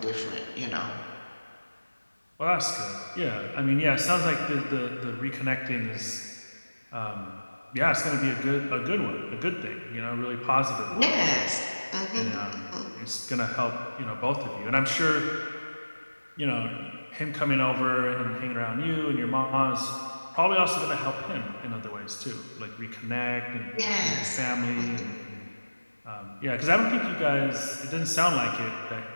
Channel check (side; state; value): both; inverted; correlation -1.00